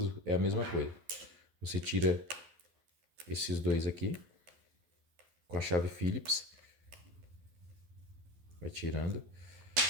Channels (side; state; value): left; late; 12 ms